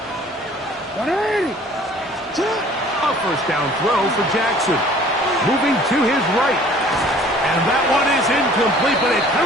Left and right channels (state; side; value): normal; both; correlation 0.52